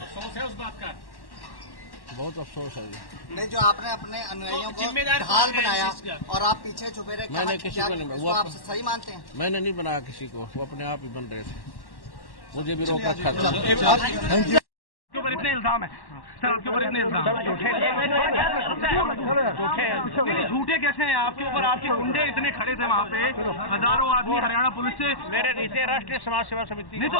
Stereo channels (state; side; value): late; right; 1.1 ms